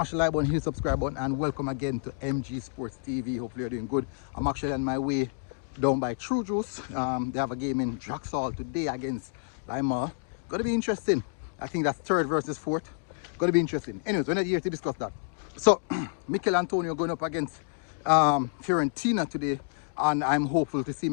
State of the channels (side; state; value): right; silent; digital silence